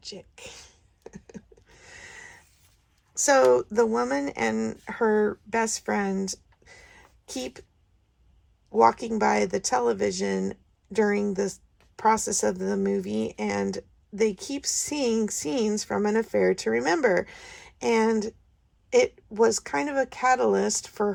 So the woman and her best friend keep walking by the television during the process of the movie, and they keep seeing scenes from an affair to remember. And it was kind of a catalyst for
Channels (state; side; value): identical; both; correlation 1.00